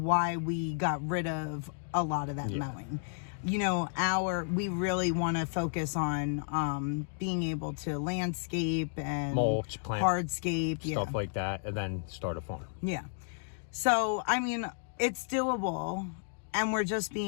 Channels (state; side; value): silent; right; digital silence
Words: we got rid of a lot of that mowing. You know, we really want to focus on being able to landscape and mulch, plant, hardscape, stuff like that, and then start a farm. Yeah. So, I mean, it's doable, and we're just